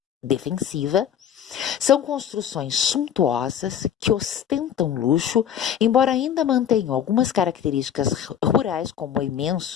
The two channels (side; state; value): right; quieter; 9.2 dB